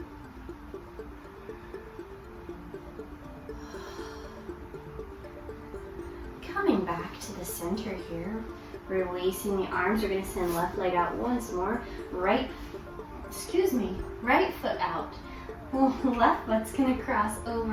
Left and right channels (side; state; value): both; identical; correlation 1.00